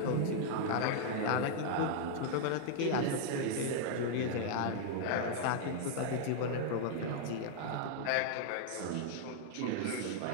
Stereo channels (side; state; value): both; different; correlation -0.01